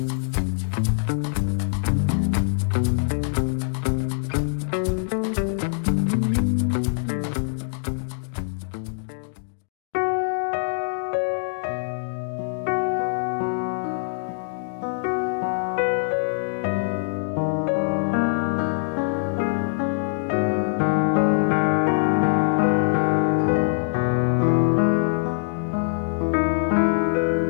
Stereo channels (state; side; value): silent; right; digital silence